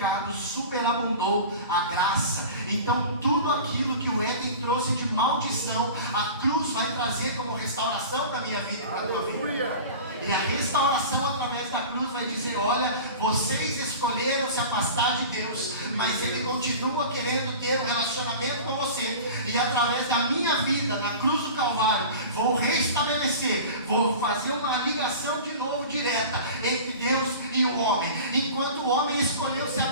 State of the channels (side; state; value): both; inverted; correlation -0.36